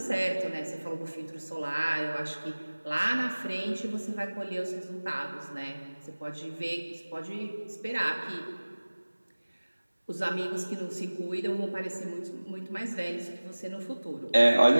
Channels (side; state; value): both; inverted; correlation -1.00